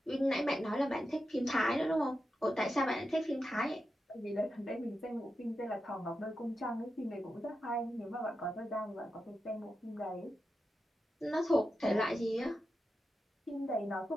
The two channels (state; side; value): normal; both; correlation 0.89